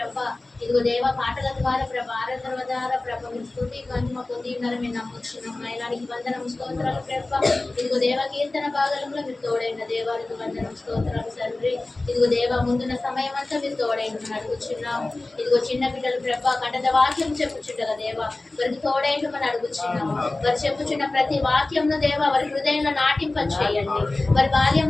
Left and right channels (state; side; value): quieter; right; 3.0 dB